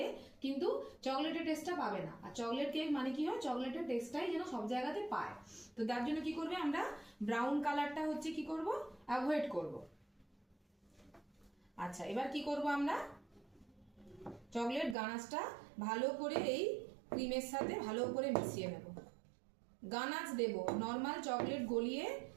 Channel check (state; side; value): drops out; left; at 15.0 s